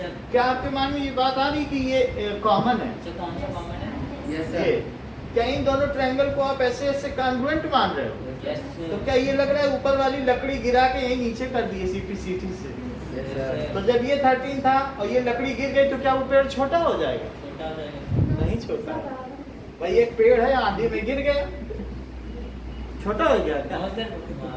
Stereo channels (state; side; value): identical; both; correlation 1.00